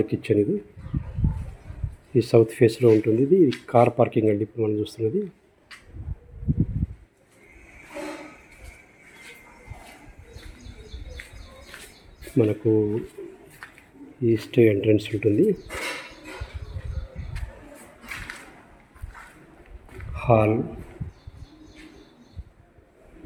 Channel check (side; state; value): both; identical; correlation 1.00